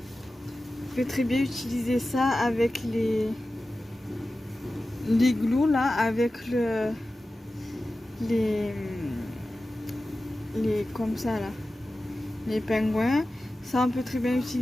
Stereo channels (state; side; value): normal; both; correlation 0.95